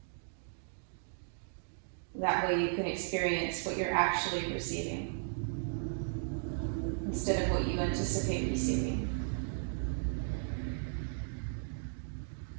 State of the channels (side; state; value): left; silent; digital silence